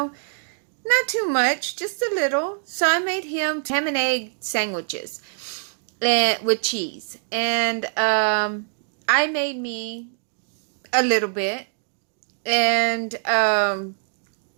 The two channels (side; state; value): left; silent; digital silence